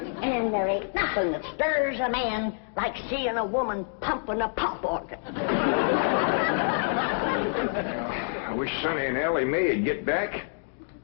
And there ain't nothing that stirs a man like seeing a woman pumping a pump organ. I wish Sonny and Elly Mae'd get back.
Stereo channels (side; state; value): right; silent; digital silence